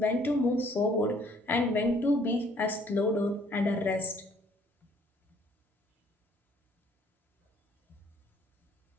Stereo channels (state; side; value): normal; both; correlation 0.61